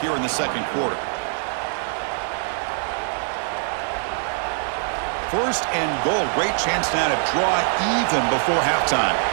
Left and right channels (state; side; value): silent; left; digital silence